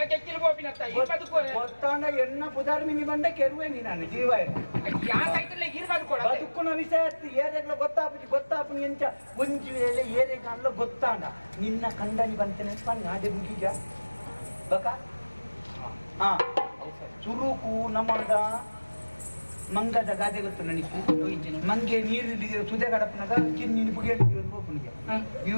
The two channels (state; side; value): inverted; both; correlation -1.00